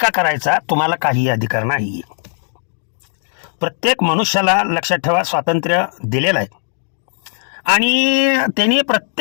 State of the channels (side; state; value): right; silent; 64 dB below the other